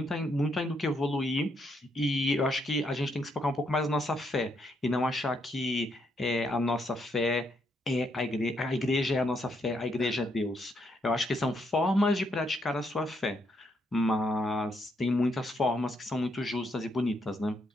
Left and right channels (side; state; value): both; normal; correlation 0.75